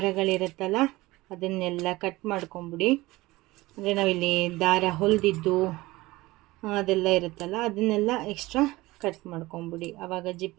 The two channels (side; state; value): left; quieter; 19.7 dB